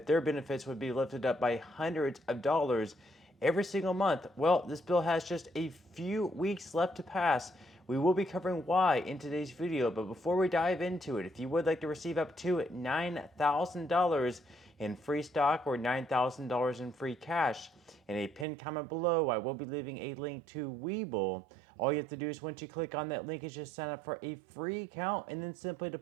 their benefits would be lifted up by hundreds of dollars every single month. Well, this bill has just a few weeks left to pass. We will be covering why in today's video, but before we dive into it, if you would like to receive up to $9,000 in free stock or $9,000 in free cash, in a pinned comment below, I will be leaving a link to Webull. All you have to do is once you click on that link is just sign up for a free account and then simply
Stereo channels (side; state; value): left; drops out; at 18.4 s